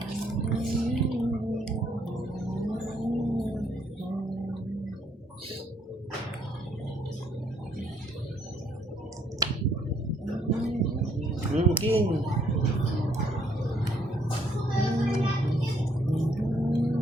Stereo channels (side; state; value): both; normal; correlation 0.68